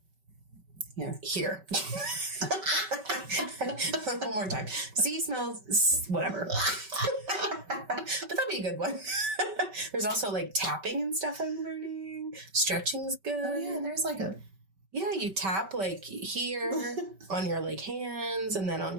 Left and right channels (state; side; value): late; left; 5.2 ms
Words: hear. One more time. See, smell, whatever. But that'd be a good one. There's also like tapping and stuff I'm learning. Stretching's good. Oh, yeah. There's like a... Yeah, you tap like here on your like hands and then on